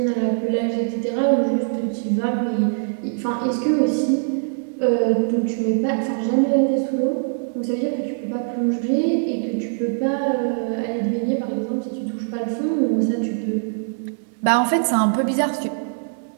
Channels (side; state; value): left; silent; digital silence